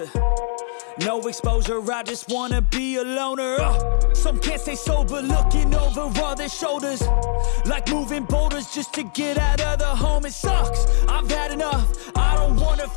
No exposure, I just wanna be a loner. Some can't stay sober, looking over all their shoulders, like moving boulders just to get out of the home. It sucks, I've had enough, I don't wanna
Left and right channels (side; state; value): right; silent; 65 dB below the other